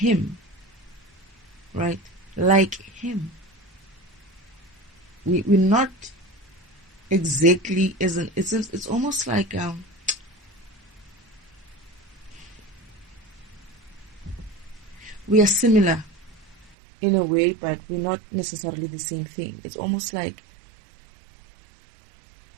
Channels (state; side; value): drops out; left; at 16.8 s